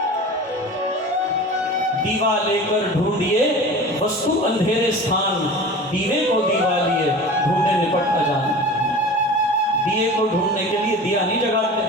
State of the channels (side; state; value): both; normal; correlation 0.36